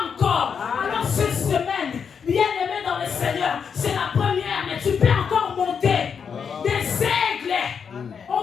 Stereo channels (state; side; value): quieter; right; 6.6 dB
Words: encore. Alors cette semaine, bien aimé dans le Seigneur, c'est la première, mais tu peux encore monter. Des aigles,